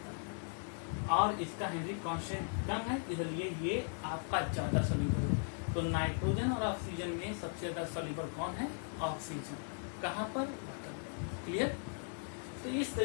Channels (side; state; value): right; silent; 53 dB below the other